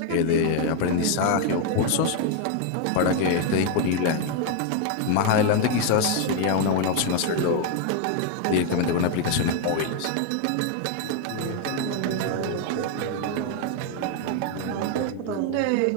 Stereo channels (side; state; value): both; different; correlation 0.01